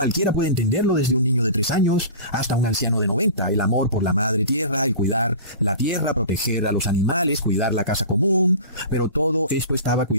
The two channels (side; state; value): both; inverted; correlation -0.36